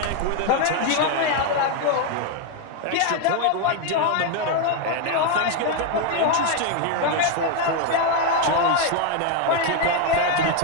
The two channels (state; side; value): different; both; correlation 0.01